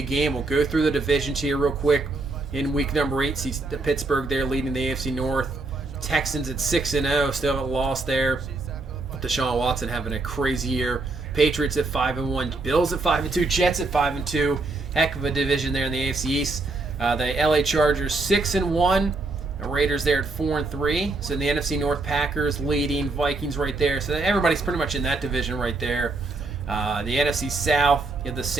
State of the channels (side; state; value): left; quieter; 3.4 dB